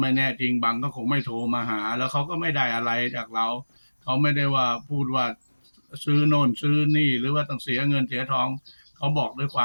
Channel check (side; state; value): both; inverted; correlation -1.00